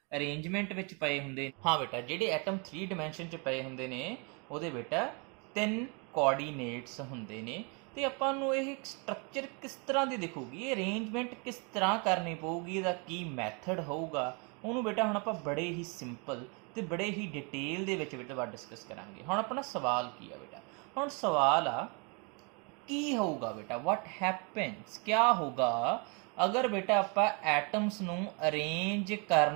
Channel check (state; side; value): quieter; left; 32.5 dB